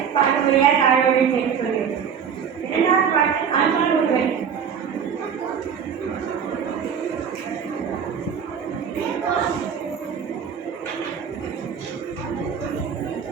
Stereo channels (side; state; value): left; quieter; 7.3 dB